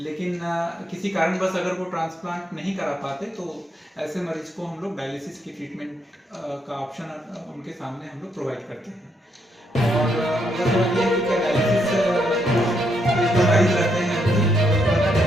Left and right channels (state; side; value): normal; both; correlation 0.77